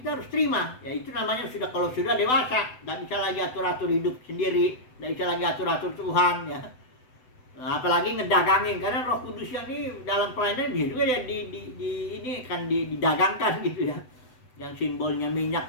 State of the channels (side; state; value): right; late; 7.9 ms